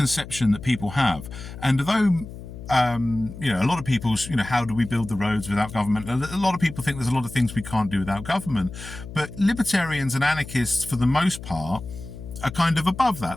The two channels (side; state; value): left; noise; hum, 13 dB below the sound